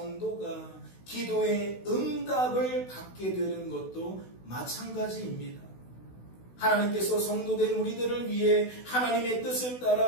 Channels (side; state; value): right; late; 16 ms